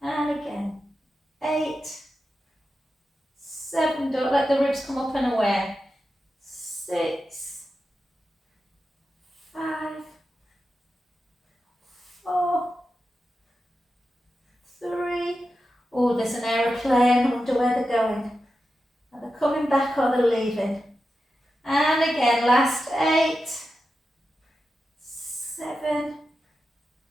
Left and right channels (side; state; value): both; normal; correlation 0.90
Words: And again. 8, 7, don't let the ribs come up and away. 6, 5, 4, 3. Oh, there's an aeroplane. I wonder where they're going. Are they coming back or they're leaving? And again, last 8, 7,